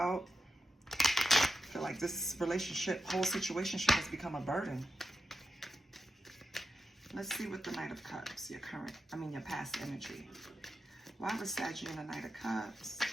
I feel like this relationship, whole situation has become a burden. Let's see what the Knight of Cups, your past energy. Why was Sagittarius in the Knight of Cups?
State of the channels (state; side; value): normal; both; correlation 0.89